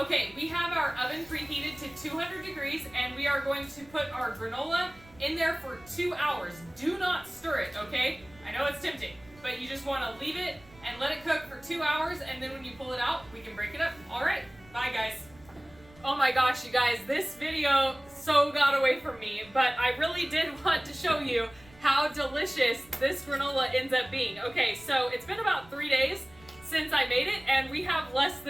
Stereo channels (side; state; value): right; noise; rumble, 25 dB below the sound